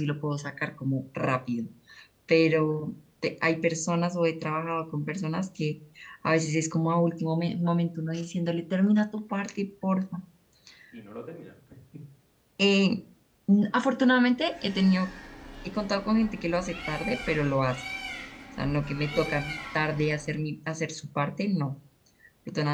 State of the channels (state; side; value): identical; both; correlation 1.00